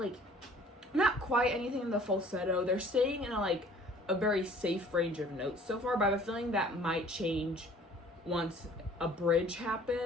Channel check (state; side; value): normal; both; correlation 0.52